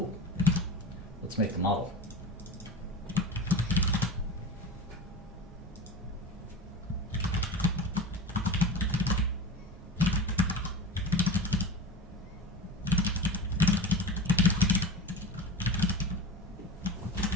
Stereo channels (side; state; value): both; normal; correlation 0.31